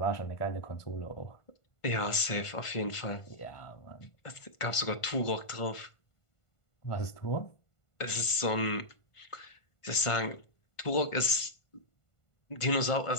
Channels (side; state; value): right; late; 1.5 ms